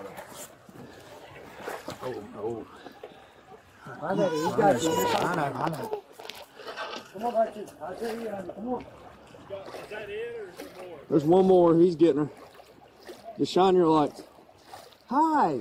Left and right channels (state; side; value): identical; both; correlation 1.00